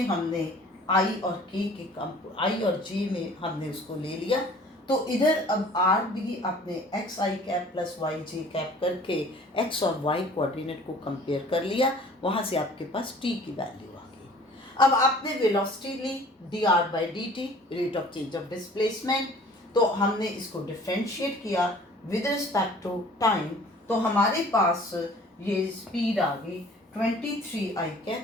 हमने i और k के i और j में हमने उसको ले लिया, तो इधर अब r भी आपने एक्स आई कैप प्लस वाई जे कैप करके x और y कोऑर्डिनेट को कंपेयर कर लिया, वहाँ से आपके पास t की वैल्यू आ गई। अब आपने वेलोसिटी ली dr by dt, rate of change of displacement, तो हमने इसको डिफ्रेंशिएट किया विद रिस्पेक्ट टू टाइम, तो हमारे पास ये स्पीड आ गई 23 आई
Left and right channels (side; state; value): both; normal; correlation 0.50